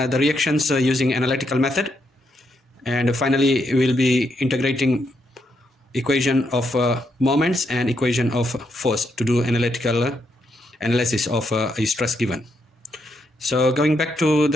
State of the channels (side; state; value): both; normal; correlation 0.79